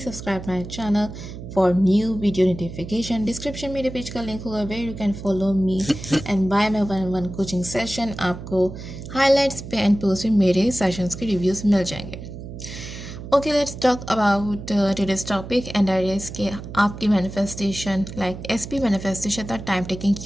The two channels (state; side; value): noise; right; hum, 11 dB below the sound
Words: subscribe my channel for new video notification. Description मेरे page का link होगा where you can follow me and buy my one-on-one coaching session. आपको highlights पे and post पे मेरे sessions के reviews मिल जाएंगे. Okay, let's talk about today's topic and that is कि आपकी manifestation like SP manifestation इतना time taking